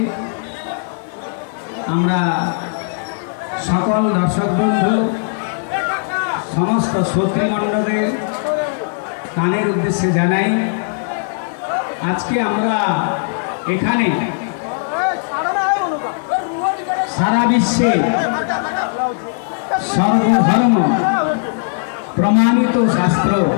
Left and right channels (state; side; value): silent; right; 58 dB below the other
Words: আমরা সকল দর্শক বন্ধু সমস্ত শ্রোতৃমণ্ডলের কানের উদ্দেশ্যে জানাই আজকে আমরা এখানে সারা বিশ্বে সর্বধর্ম প্রমাণিত শাস্ত্র